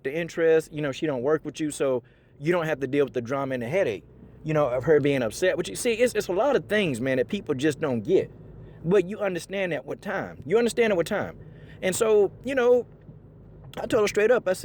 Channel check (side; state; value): both; identical; correlation 1.00